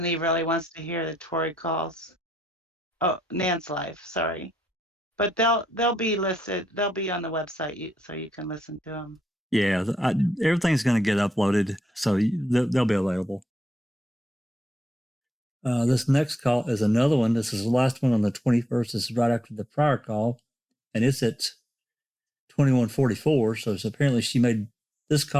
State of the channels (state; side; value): normal; both; correlation 0.82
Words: really wants to hear the Tori calls. Oh, Nan's live, sorry. But they'll be listed. They'll be on the website, so you can listen to them. Yeah, everything's going to get uploaded, so they'll be available. This next call is another one. This is the last one on the 21st. This is right after the prior call, and it's at 21:44. So it's apparently she made this